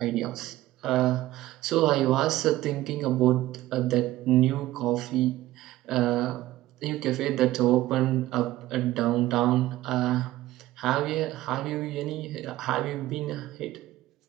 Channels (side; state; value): left; quieter; 16.1 dB